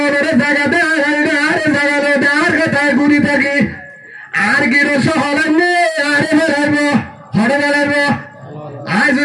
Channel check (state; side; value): identical; both; correlation 1.00